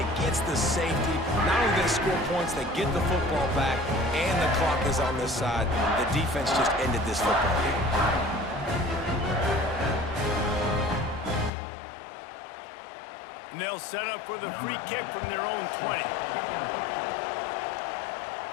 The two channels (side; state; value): right; drops out; at 11.5 s